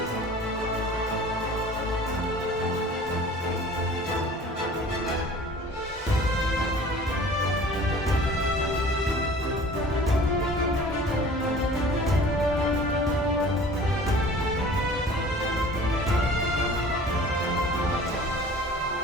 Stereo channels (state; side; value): normal; both; correlation 0.46